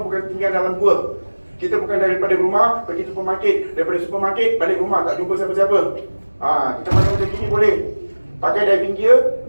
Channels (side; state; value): both; inverted; correlation -1.00